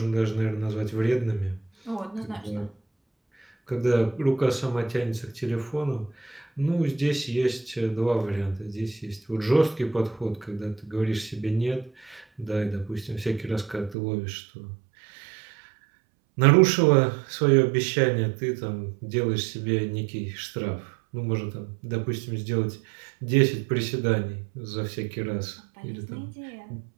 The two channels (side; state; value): left; drops out; at 14.0 s